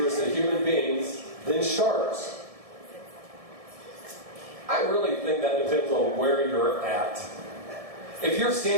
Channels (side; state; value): left; late; 1.7 ms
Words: to human beings than sharks. I really think that depends on where you're at. If you're